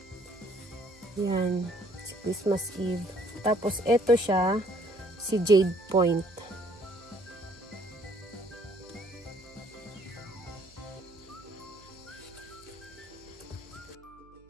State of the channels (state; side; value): noise; right; hum, 26 dB below the sound